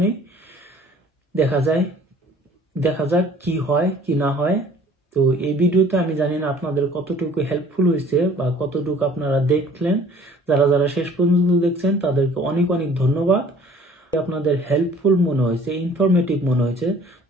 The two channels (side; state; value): both; normal; correlation 0.52